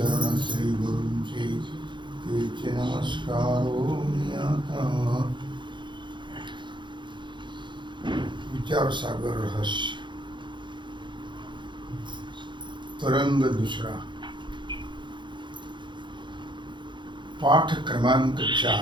श्रीगुरूंचे तेचे नमस्कारो आता। विचार सागर रहस्य तरंग दुसरा पाठ क्रमांक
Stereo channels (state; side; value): late; left; 0.23 ms